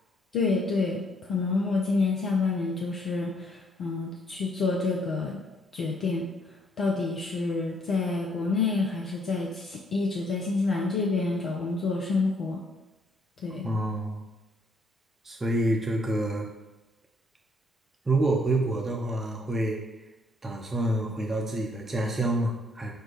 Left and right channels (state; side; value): normal; both; correlation 0.68